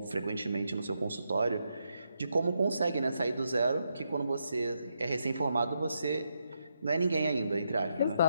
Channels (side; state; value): both; inverted; correlation -0.81